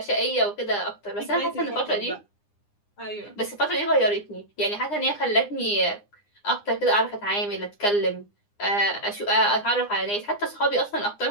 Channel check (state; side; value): late; right; 9.8 ms